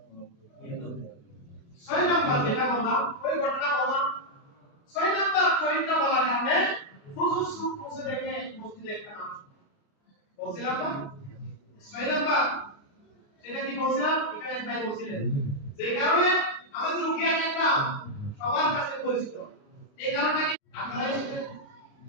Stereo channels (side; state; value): right; late; 28 ms